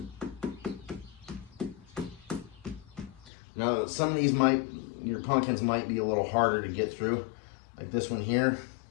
Now some of these your pumpkins might be a little harder to get through, like this one here.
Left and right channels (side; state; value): right; drops out; at 3.3 s